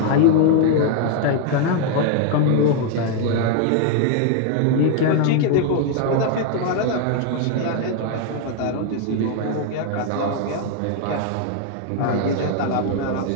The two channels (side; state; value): both; different; correlation 0.00